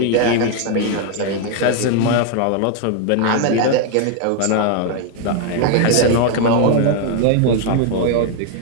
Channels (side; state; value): both; different; correlation 0.01